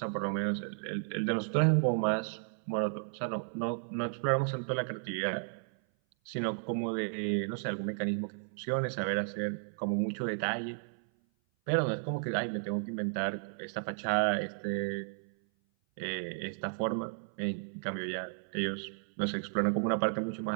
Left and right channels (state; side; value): silent; left; 55 dB below the other